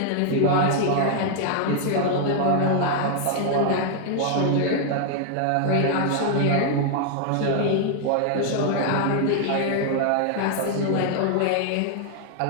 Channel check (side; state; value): both; different; correlation 0.00